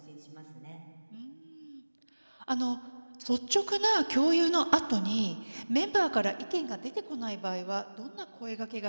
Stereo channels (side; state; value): both; inverted; correlation -1.00